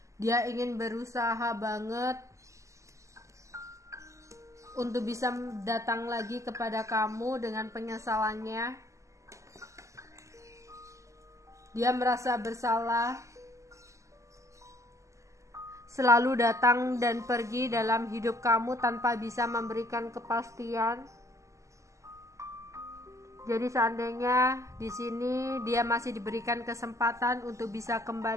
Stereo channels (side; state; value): left; late; 0.15 ms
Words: Dia ingin berusaha banget untuk bisa datang lagi kepada kamu dengan penyesalannya. Dia merasa bersalah, selalu datang dan pergi dalam hidup kamu tanpa bisa memberikan kepastian. Jadi seandainya di sini dia masih diberikan kesempatan untuk bisa